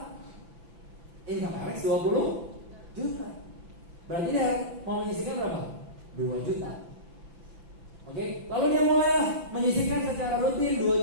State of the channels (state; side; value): late; left; 5.9 ms